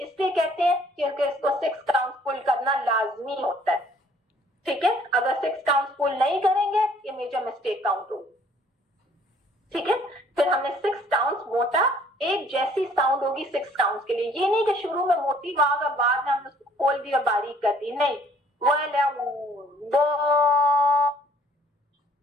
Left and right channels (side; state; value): both; normal; correlation 0.59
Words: لیے کہتے ہیں کیونکہ اس کو 6 کاؤنٹس فل کرنا لازمی ہوتا ہے. ٹھیک ہے, اگر 6 کاؤنٹس فل نہیں کریں گے یہ میجر مسٹیک کاؤنٹ ہوگی. ٹھیک ہے, پھر ہم نے 6 کاؤنٹس موٹا ایک جیسی ساؤنڈ ہوگی 6 کاؤنٹس کے لیے. یہ نہیں کہ شروع میں موٹی آواز اور بعد میں ہم اس کو کھول دی اور باریک کر دی, نہیں. بو